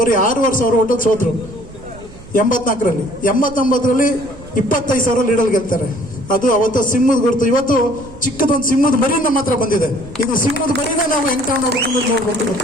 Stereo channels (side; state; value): right; noise; rumble, 18 dB below the sound